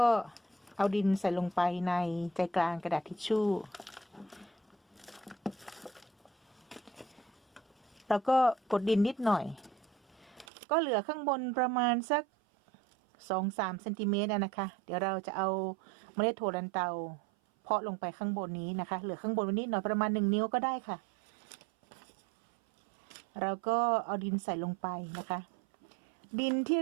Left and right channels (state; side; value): drops out; left; at 10.5 s